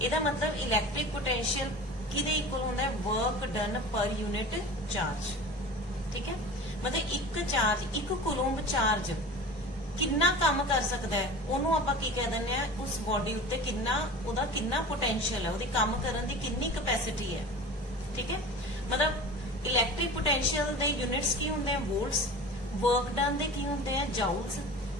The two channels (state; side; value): normal; both; correlation 0.36